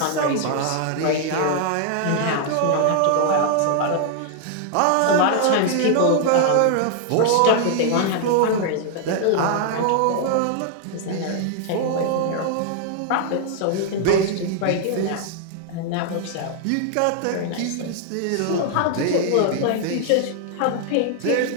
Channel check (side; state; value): both; different; correlation 0.00